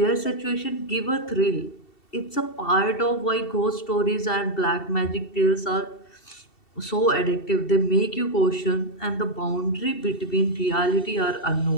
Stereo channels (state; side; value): late; right; 2.7 ms